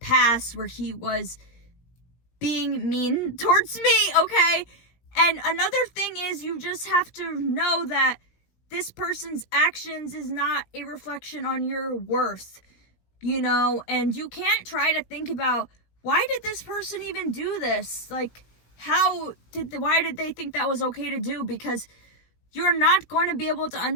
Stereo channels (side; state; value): right; late; 17 ms